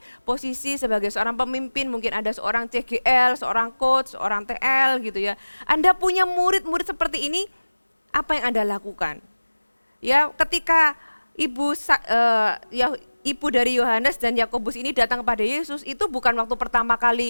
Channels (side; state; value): both; inverted; correlation -1.00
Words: posisi sebagai seorang pemimpin, mungkin ada seorang CGL, seorang coach, seorang TL gitu ya. Anda punya murid-murid seperti ini, apa yang Anda lakukan? Ya, ketika ibu dari Yohanes dan Yakobus ini datang kepada Yesus, itu bukan waktu pertama